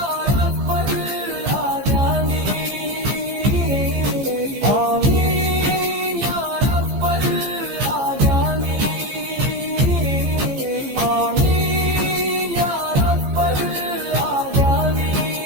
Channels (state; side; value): late; left; 15 ms